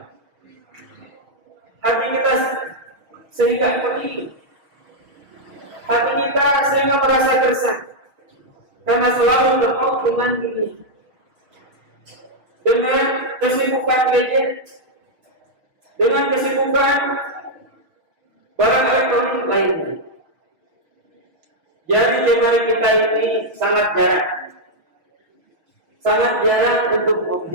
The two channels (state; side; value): late; left; 6.3 ms